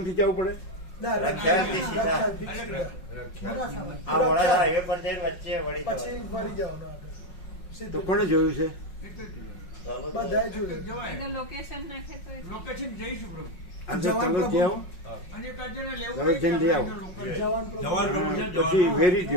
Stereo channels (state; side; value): late; right; 5.5 ms